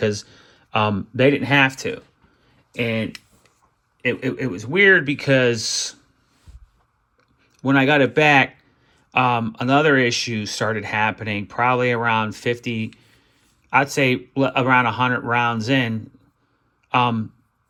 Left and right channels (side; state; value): both; identical; correlation 1.00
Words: they didn't have to. And it was weird because when I got it back, another issue started happening probably around 50, I'd say around 100 rounds in.